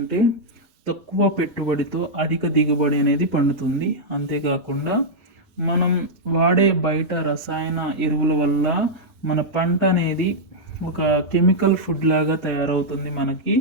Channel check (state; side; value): normal; both; correlation -0.06